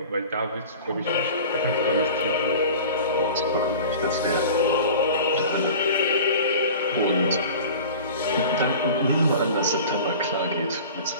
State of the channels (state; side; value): inverted; both; correlation -0.39